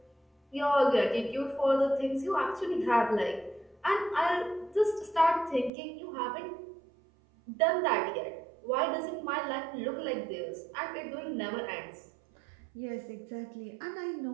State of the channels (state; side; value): drops out; left; at 5.7 s